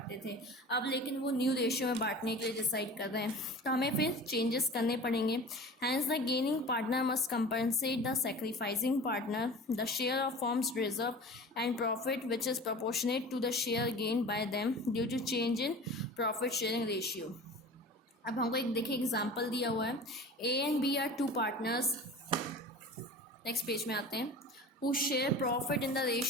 थे, अब लेकिन वो न्यू रेशियो में बांटने के लिए डिसाइड कर रहे हैं, तो हमें फिर चेंजेस करने पड़ेंगे। Hence the gaining partner must compensate the sacrificing partner the share of firm's reserve and profit which is proportionate to the share gain by them due to change in profit sharing ratio. अब हमको एक देखिए example दिया हुआ है, A and B are 2 partners, next page में आते हैं, who share profit in the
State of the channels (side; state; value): both; normal; correlation 0.38